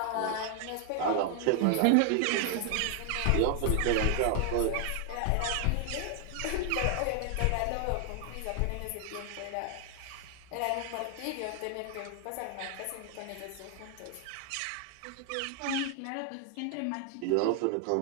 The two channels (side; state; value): both; different; correlation 0.00